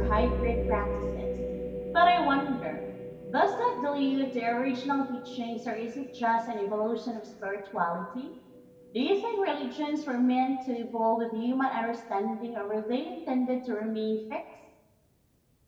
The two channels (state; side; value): identical; both; correlation 1.00